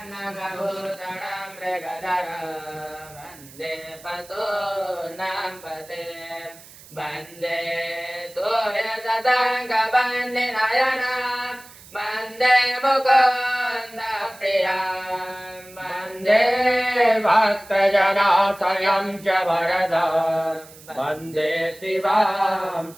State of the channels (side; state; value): right; noise; hiss, 21 dB below the sound